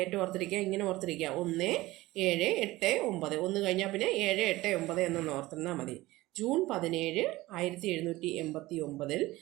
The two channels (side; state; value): left; quieter; 18.5 dB